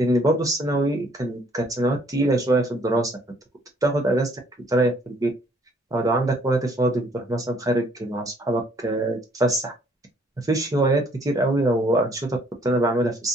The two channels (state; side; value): normal; both; correlation 0.62